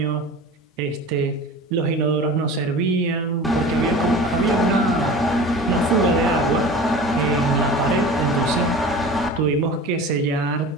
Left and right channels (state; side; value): normal; both; correlation 0.37